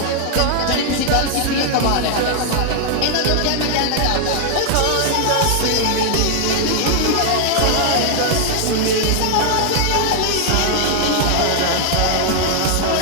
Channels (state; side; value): different; both; correlation 0.00